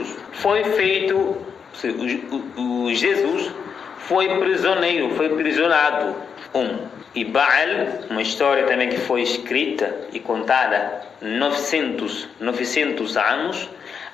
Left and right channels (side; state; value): right; quieter; 6.6 dB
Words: foi feito, Jesus foi prisioneiro, foi prisionado. E Baal, uma história também que foi escrita e contada 900 anos